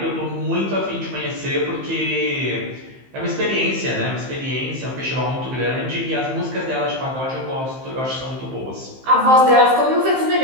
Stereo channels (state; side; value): late; left; 15 ms